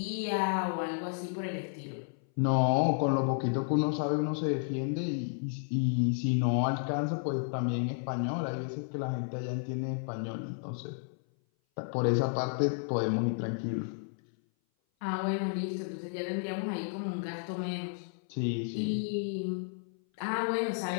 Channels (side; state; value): right; silent; 56 dB below the other